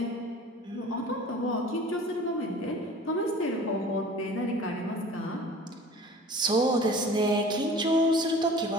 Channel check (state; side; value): normal; both; correlation 0.44